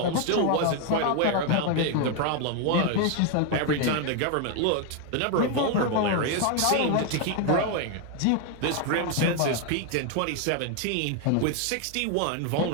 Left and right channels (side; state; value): both; different; correlation 0.01